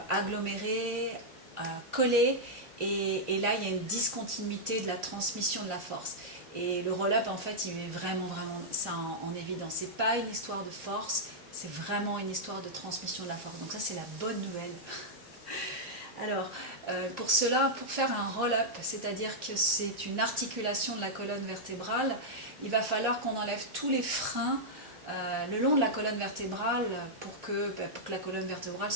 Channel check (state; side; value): normal; both; correlation -0.07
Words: agglomérés, collés et là il y a une discontinuité de la transmission de la force. Et le roll-up en fait il met vraiment ça en évidence. C'est pas une histoire de force, c'est vraiment une histoire de transmission de la force. Donc ça c'est la bonne nouvelle. Alors pour cela, pour faire un roll-up, c'est-à-dire que c'est une articulation de la colonne vertébrale, il va falloir qu'on enlève tous les freins le long de la colonne vertébrale pour que la colonne vertébrale